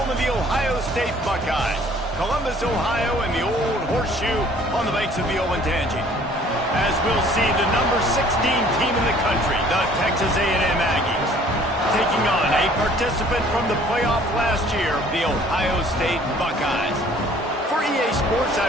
of the Ohio State Buckeyes, Columbus, Ohio, and the old horseshoe on the banks of the Olentangy. As we'll see, the number 16 team in the country, the Texas A&M Aggies, taking on a participant from the playoff last year, the Ohio State Buckeyes. For EA Sports,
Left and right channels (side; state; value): both; normal; correlation 0.55